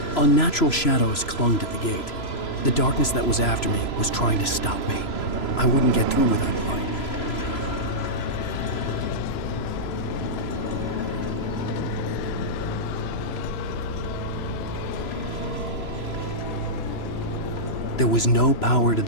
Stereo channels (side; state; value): right; late; 3.0 ms